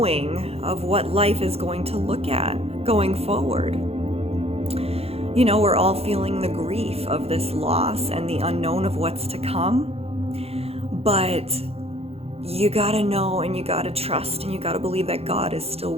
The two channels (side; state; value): left; late; 0.29 ms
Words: of what life is going to look at going forward. You know, we're all feeling the grief of this loss and the unknown of what's to come. But you gotta know and you gotta trust and you gotta believe that God is still